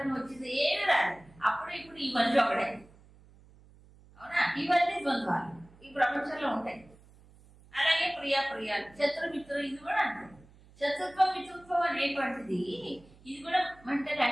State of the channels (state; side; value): noise; right; hum, 25 dB below the sound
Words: వచ్చింది ఏమి రాదు. అప్పుడు ఇప్పుడు ఈ మనిషి ఒకడే. అవునా? ఇవన్నీ ద్వంద్వాలు ఈ ప్రపంచంలో ఉంటాయి. అలాగే ప్రియాలు, శత్రుమిత్రులు, ఇది కూడా అంతే. శత్రుత్వం మిత్రుత్వం అనేటువంటిది ఇది కూడా మెంటల్